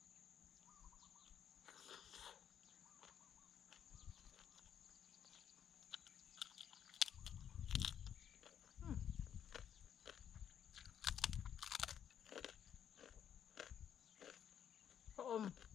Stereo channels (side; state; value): right; quieter; 9.0 dB